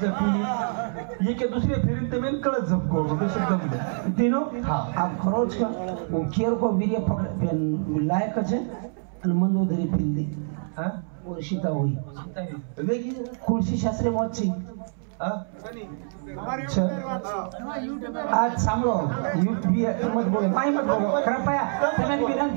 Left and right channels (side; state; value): left; silent; 61 dB below the other